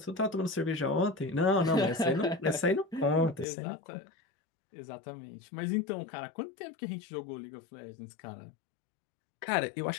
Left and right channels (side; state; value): right; drops out; at 3.5 s